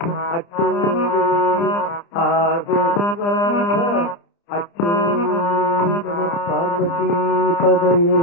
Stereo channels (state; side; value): late; right; 30 ms